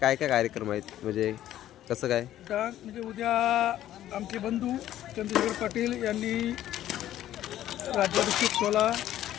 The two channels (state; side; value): quieter; right; 12.6 dB